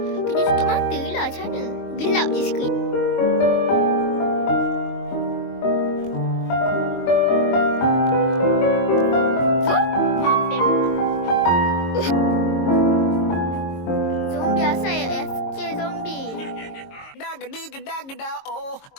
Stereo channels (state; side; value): late; right; 22 ms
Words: Kena tutup mata lah. Macam mana? Gelap je skrin. Zombie asal AFK zombie. Oh,